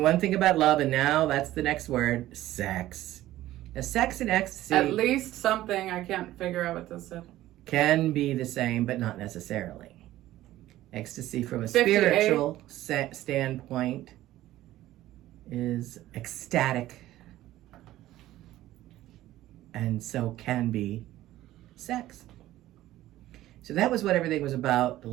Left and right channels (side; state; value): left; quieter; 14.9 dB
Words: thing about love, and now that's the next word, sex. Now, sex and ecstasy At least something. I can't figure out what this said. can be the same, but not necessarily. Ecstasy from a 58. spiritual standpoint is ecstatic, and so can be sex. So that was what everything was about the